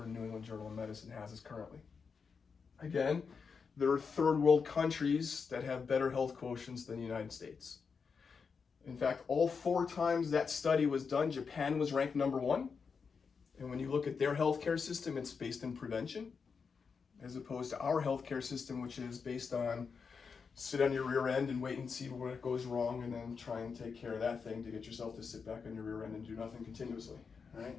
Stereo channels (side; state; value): right; quieter; 5.6 dB